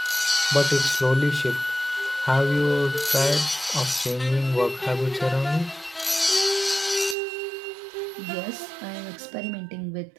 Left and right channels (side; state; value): left; drops out; at 7.2 s